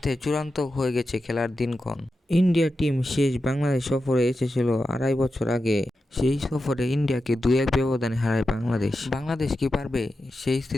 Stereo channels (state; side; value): normal; both; correlation 0.90